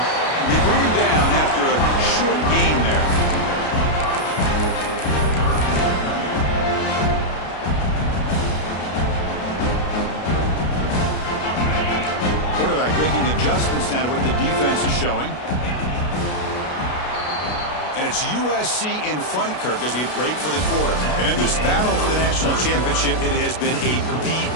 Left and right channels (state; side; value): late; right; 33 ms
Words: They bring him down after a short gain there. Quarterback making adjustments now to what the defense is showing. And it's USC in front, Kirk, as we break for the quarter. And in this battle for the national championship, it has been a